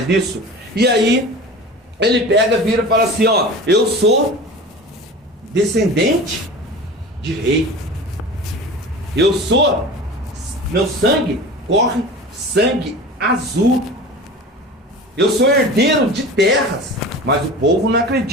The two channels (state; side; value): normal; both; correlation 0.36